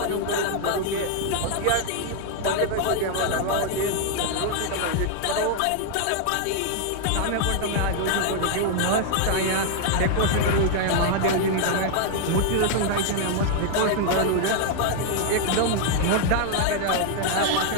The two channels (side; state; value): both; different; correlation 0.00